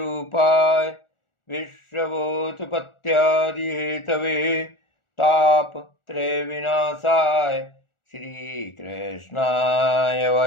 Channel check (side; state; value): right; late; 1.4 ms